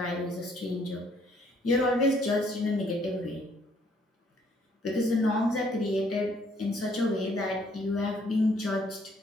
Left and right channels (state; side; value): normal; both; correlation 0.65